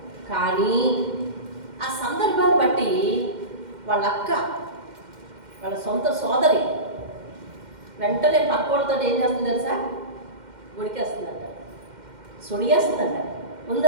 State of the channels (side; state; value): left; late; 2.1 ms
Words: కానీ ఆ సందర్భాన్ని బట్టి వాళ్ళ అక్క, వాళ్ళ సొంత సోదరి వెంటనే పక్కోళ్ళతో ఏం చేస్తుంది తెలుసా? గుడికేస్తుందంట, సొడిగేస్తుందంట.